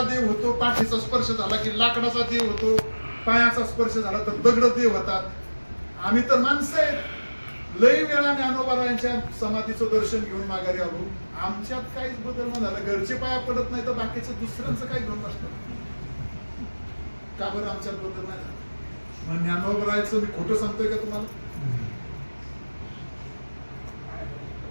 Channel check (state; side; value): inverted; both; correlation -1.00